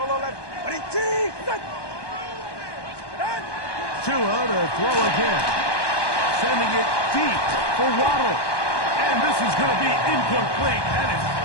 left. Tua to throw again. Sending it deep for Waddle. And this is going to be incomplete. That is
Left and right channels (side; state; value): right; late; 1.2 ms